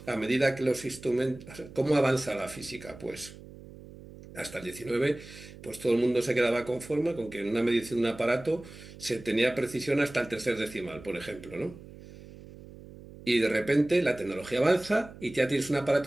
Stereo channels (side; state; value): right; noise; hum, 17 dB below the sound